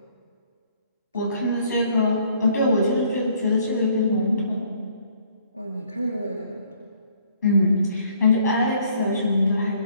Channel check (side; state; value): both; inverted; correlation -0.63